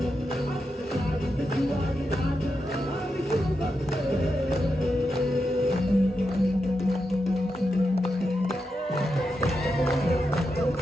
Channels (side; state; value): both; normal; correlation 0.87